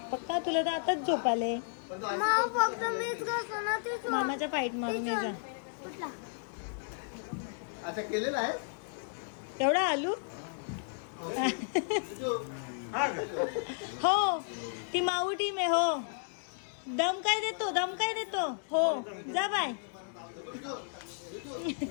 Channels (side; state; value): right; silent; digital silence